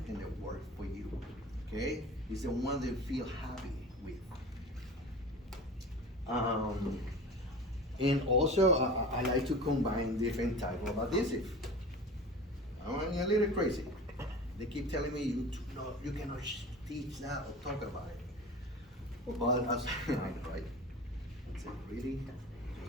and that work for you, okay? It's the one that you feel happy with. And also, I like to combine different type of adhesive. I'm a little crazy. They keep telling me you cannot teach that or talk about it. But as I know, right? I said, really?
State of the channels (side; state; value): both; normal; correlation 0.35